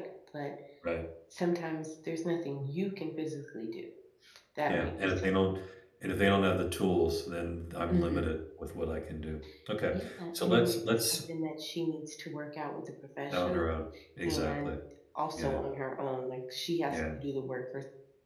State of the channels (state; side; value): identical; both; correlation 1.00